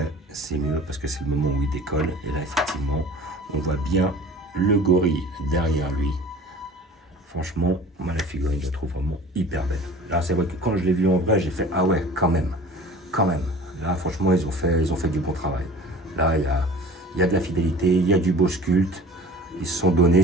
c'est mieux parce que c'est le moment où il décolle. Et là, effectivement, on voit bien le gorille derrière lui. Franchement, moi, la figurine, je la trouve vraiment hyper belle. Là, c'est vrai que quand je l'ai vu en vrai, j'ai fait, ah ouais, quand même, quand même. Là, franchement, ils ont fait du bon travail. Là, il y a de la fidélité, il y a du beau sculpte. Ils se sont donnés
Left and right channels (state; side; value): normal; both; correlation 0.43